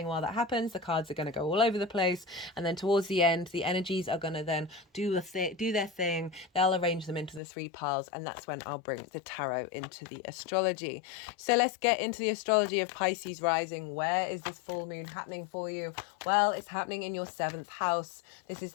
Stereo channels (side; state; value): right; drops out; at 7.4 s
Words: while that happens. The cards are going to go all over the place, and then towards the end the energies are going to then do their thing. They'll arrange them into the 3 piles, and that's when I'll bring the tarot into the astrology. So let's get into the astrology of Pisces rising. Where is this full moon happening for you? Well, it's happening in your 7th house. This is